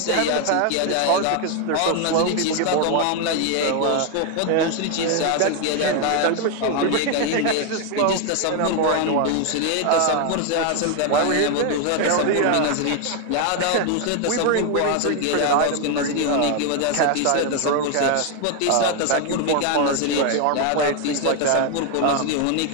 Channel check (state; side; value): different; both; correlation 0.01